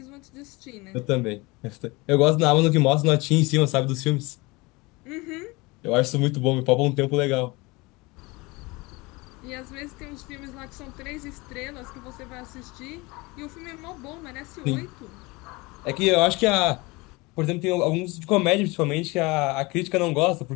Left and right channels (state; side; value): quieter; right; 24.3 dB